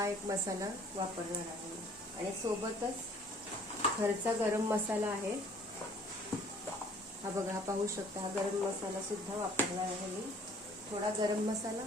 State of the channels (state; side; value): normal; both; correlation 0.56